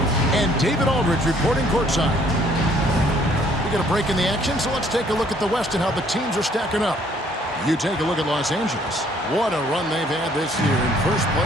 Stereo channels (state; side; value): normal; both; correlation 0.62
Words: and David Aldridge reporting courtside. We got a break in the action, so let's take a look at the West and how the teams are stacking up. You take a look at Los Angeles. What a run they've had this year in first